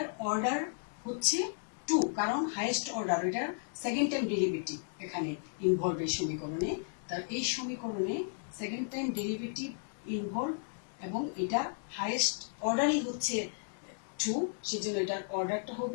অর্ডার হচ্ছে 2, কারণ হাইয়েস্ট অর্ডার, এটার সেকেন্ড টাইম ডেরিভেটিভ এখানে ইনভলভ এই সমীকরণে। তার এই সমীকরণে সেকেন্ড টাইম ডেরিভেটিভ ইনভলভ এবং এটা হাইয়েস্ট অর্ডারই হচ্ছে 2, সেজন্য এটার অর্ডারটা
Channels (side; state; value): right; silent; digital silence